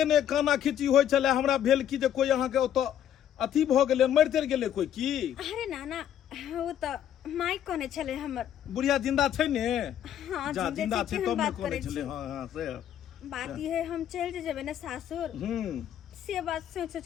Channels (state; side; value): quieter; right; 10.3 dB